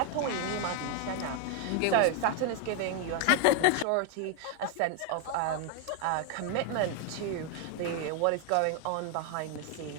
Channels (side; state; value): both; different; correlation 0.01